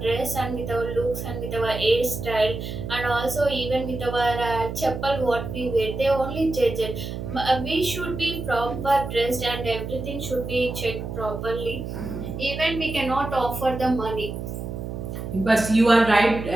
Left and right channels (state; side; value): noise; right; hum, 7 dB below the sound